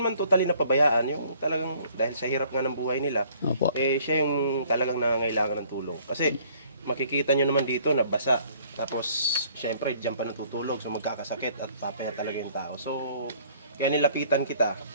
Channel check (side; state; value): both; inverted; correlation -0.58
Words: totally napabayaan, yung talagang dahil sa hirap nga ng buhay nila, Opo. siya yung talagang nangangailangan ng tulong. Kasi makikita nyo naman dito na basa, tapos siyempre diyan pa natutulog, so magkakasakit at papaya talaga yung tao. So, kaya nilapitan kita,